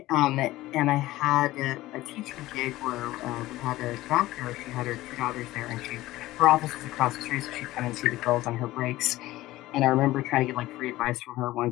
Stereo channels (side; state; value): right; quieter; 16.9 dB